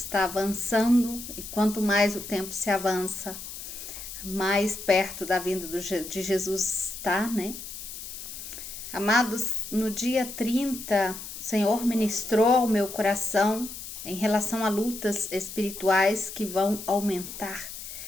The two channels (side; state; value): left; noise; hiss, 10 dB below the sound